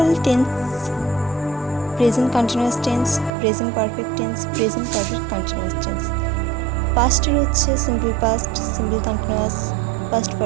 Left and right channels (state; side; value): drops out; left; at 3.3 s